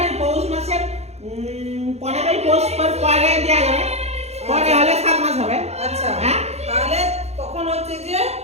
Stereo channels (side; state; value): left; late; 0.31 ms